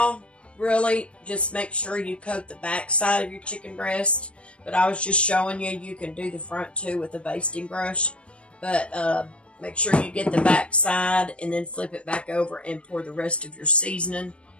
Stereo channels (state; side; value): late; right; 0.060 ms